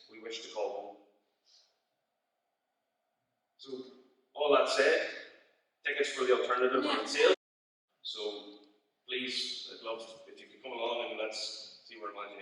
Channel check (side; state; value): both; identical; correlation 1.00